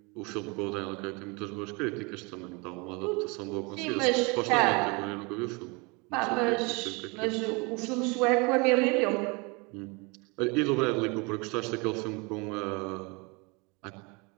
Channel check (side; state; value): left; quieter; 28.7 dB